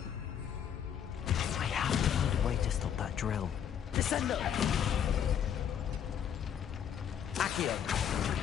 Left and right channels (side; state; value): right; quieter; 8.8 dB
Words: I have to find a way to stop that drill. Descendo. Accio.